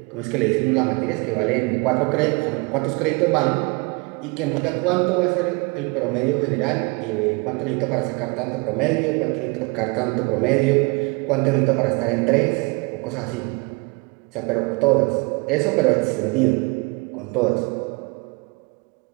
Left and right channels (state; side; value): quieter; left; 28.7 dB